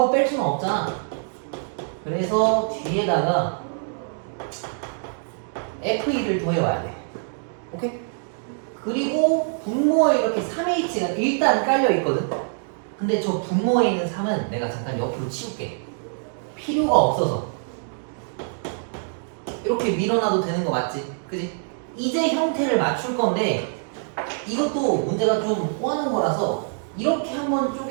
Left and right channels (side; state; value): left; silent; digital silence